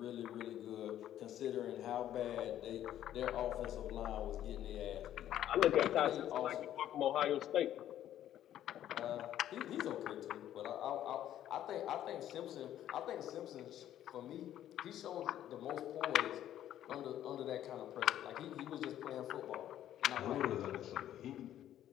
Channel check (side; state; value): right; quieter; 11.7 dB